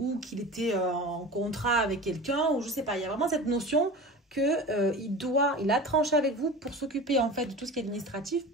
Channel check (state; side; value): normal; both; correlation 0.34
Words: qu'il était en contrat avec quelqu'un, ou je sais pas. Il y a vraiment cette notion que il a tranché avec vous pour s'occuper en fait de tout ce qui est administratif,